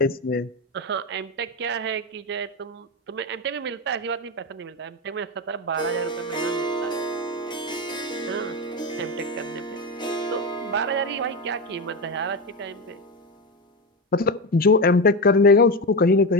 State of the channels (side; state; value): both; normal; correlation 0.16